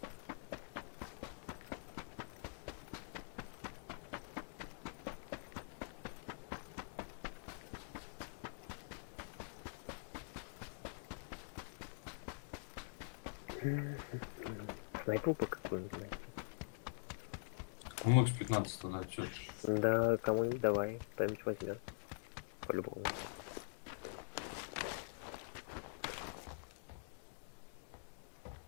Так, ну у нас не густо. Пока полутаем чутка. Сейчас вон туда пойдем, там утонем. Снайпу-то какую-нибудь, блядь. Кому X15 тогда, чё? Да, кому-нибудь давай, кто-нибудь возьмет. По-любому. Шестерка.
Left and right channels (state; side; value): silent; right; digital silence